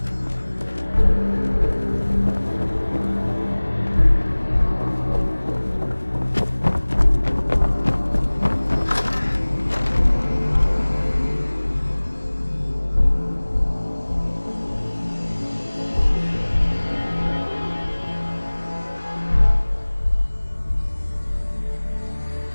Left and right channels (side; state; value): both; inverted; correlation -1.00